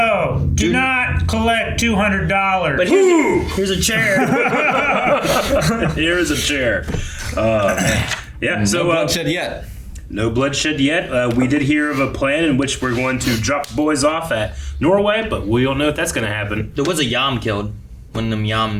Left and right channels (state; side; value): identical; both; correlation 1.00